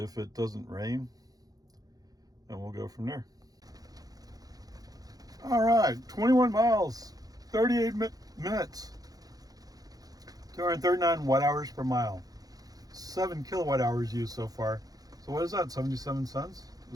it doesn't rain, and we'll go from there. All right, 21 miles, 38 minutes, 239 watt hours per mile, 7 kilowatt hours used so far. So what is that, 77 cents?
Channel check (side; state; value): left; late; 0.18 ms